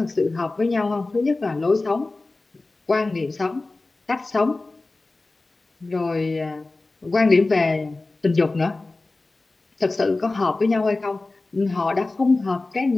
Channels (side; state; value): right; quieter; 3.2 dB